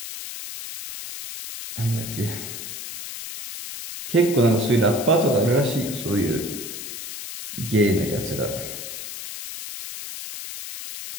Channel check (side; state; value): left; noise; hiss, 9 dB below the sound